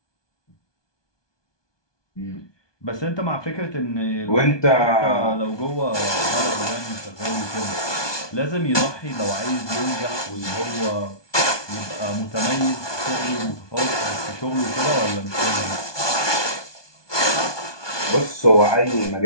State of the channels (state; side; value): late; right; 1.2 ms